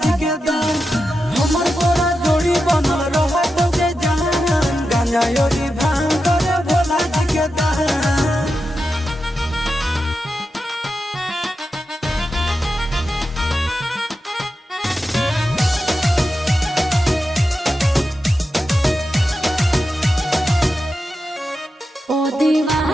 जी के दान। हमर तोरा जोड़ी बनल रहत के जहान। गांजा योगी भांग करे भोला जी के दान। ओ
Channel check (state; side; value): normal; both; correlation 0.90